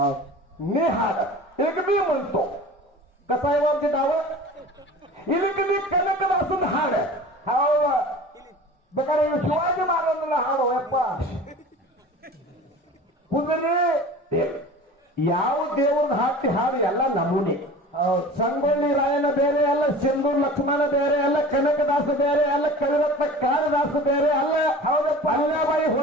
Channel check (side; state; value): both; normal; correlation 0.39